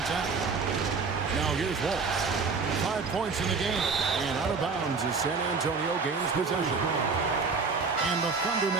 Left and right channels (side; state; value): left; quieter; 4.7 dB